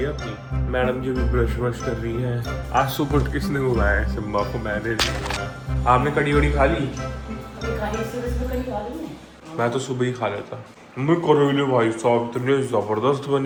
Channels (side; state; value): both; identical; correlation 1.00